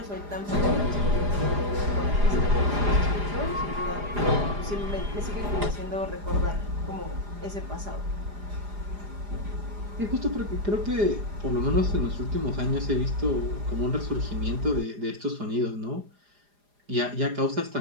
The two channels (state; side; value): late; left; 4.9 ms